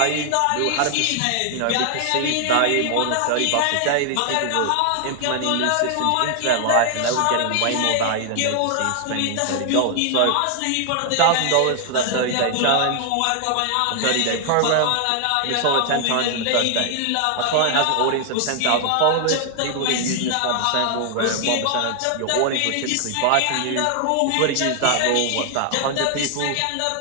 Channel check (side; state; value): both; different; correlation 0.00